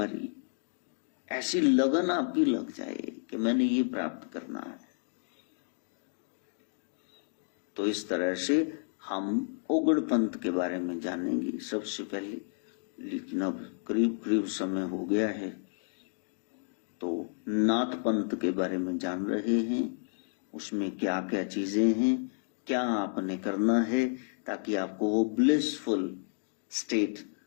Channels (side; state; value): right; silent; digital silence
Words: ऐसी लगन आपकी लग जाए कि मैंने ये प्राप्त करना है। तो इस तरह से हम उगड़ पंथ के बारे में जानेंगे सबसे पहले। लेकिन अब करीब करीब समय हो गया है, तो नाथ पंथ के बारे में जान रहे हैं। उसमें क्या क्या चीजें हैं, क्या आपने करना है ताकि आपको वो ब्लिसफुल स्टेट,